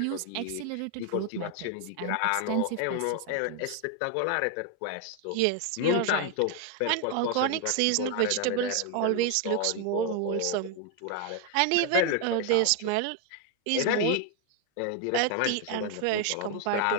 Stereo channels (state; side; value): different; both; correlation 0.01